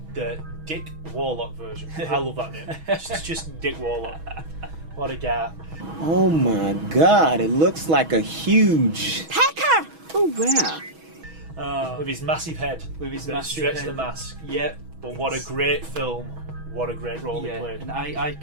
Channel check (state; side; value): late; left; 6.2 ms